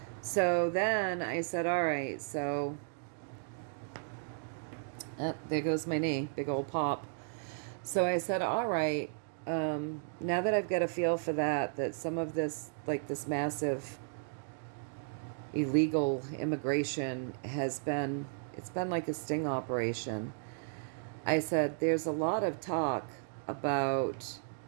So then I said, all right, so there goes my knee, big old pop. So I said, all right, now that I've got a feel for that some of this, like this massive illegal immigration it's been like a sting operation. I said there's a lot of talk about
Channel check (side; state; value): left; silent; digital silence